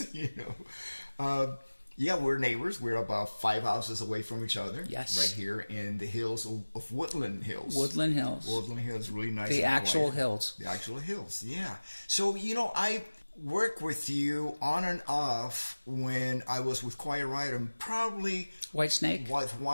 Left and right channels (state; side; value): inverted; both; correlation -1.00